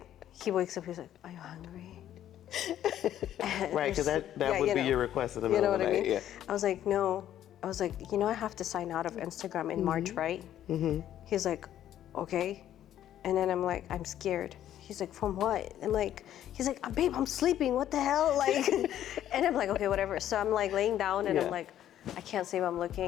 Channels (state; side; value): quieter; right; 11.4 dB